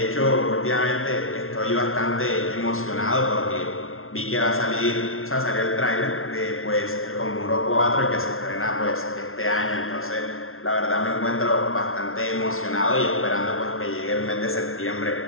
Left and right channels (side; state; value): right; late; 0.62 ms